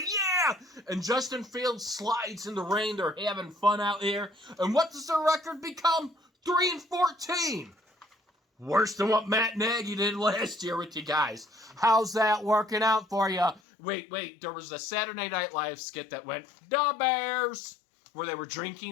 yeah. And Justin Fields slides in the rain. They're having fun out here. And what does their record become? 3-14. Worse than what Matt Nagy did last year with you guys. How's that working out for you? Wait, there was a Saturday Night Live skit that went, "The Bears," where they were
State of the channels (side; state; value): right; drops out; at 13.6 s